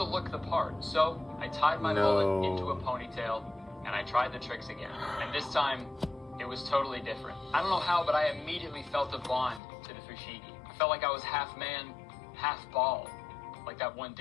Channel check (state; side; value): drops out; right; at 9.6 s